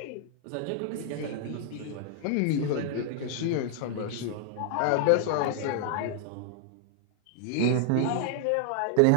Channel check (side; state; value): both; different; correlation 0.00